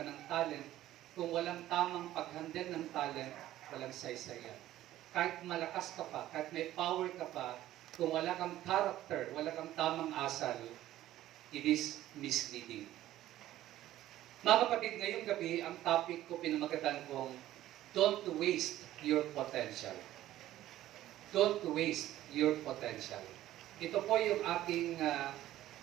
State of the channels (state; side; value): quieter; left; 14.0 dB